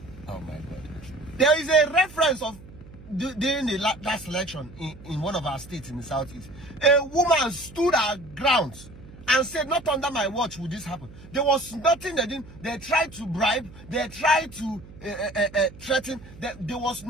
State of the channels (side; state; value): right; noise; hum, 19 dB below the sound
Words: Oh my God. There is a reference of during the last election in one of our states in the southeast. A woman stood her ground and said, not under my watch would this happen. There was nothing they didn't. They tried to bribe. They tried to threaten. There was